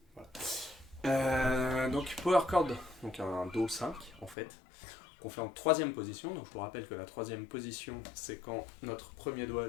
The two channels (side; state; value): right; drops out; at 4.4 s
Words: Voilà. Donc power chord, donc un Do 5 en fait, qu'on fait en troisième position. Donc je vous rappelle que la troisième position, c'est quand notre premier